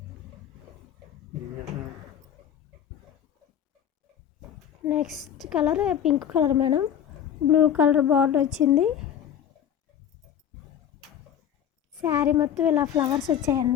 Next colour pink colour madam. Blue colour border వచ్చింది. శారీ మొత్తం ఇలా ఫ్లవర్స్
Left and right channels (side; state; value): right; quieter; 9.4 dB